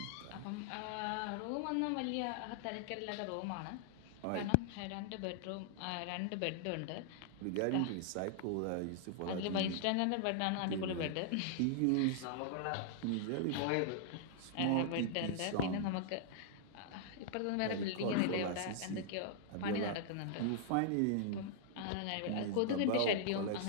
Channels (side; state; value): both; different; correlation -0.01